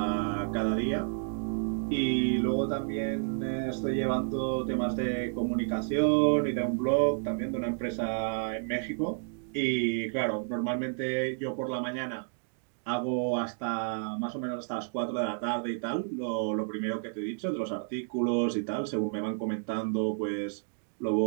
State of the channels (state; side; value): silent; left; digital silence